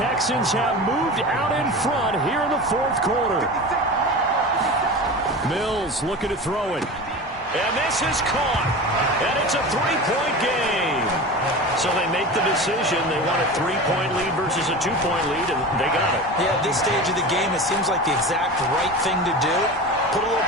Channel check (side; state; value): both; normal; correlation 0.31